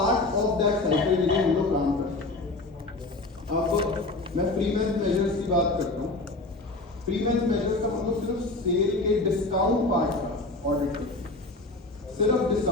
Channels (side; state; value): right; quieter; 3.0 dB